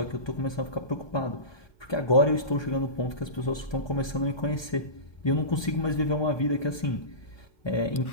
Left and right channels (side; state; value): right; late; 1.2 ms